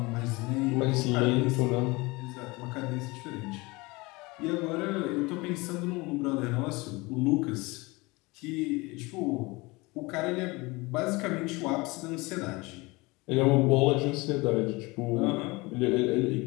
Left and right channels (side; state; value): right; quieter; 23.9 dB